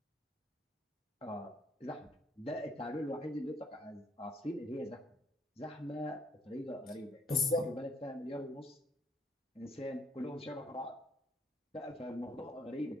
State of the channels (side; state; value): both; normal; correlation 0.65